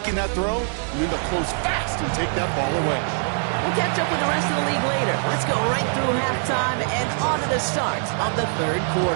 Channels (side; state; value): left; silent; 55 dB below the other